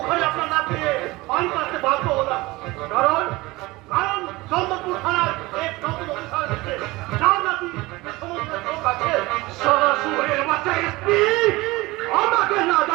আপনার না পেয়ে পানি পাচ্ছে বাধ্য হলাম। কারণ কারণ চন্দ্রপুর থানার এক নতুন অফিসার এসেছে, যার নাকি সমস্ত লোক আছে। সরাসরি বাচ্চা এসপি আমাকে না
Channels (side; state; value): left; quieter; 21.0 dB